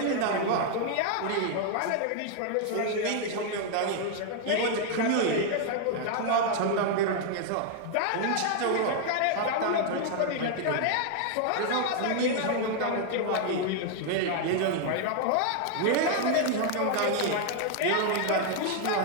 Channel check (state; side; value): different; both; correlation 0.00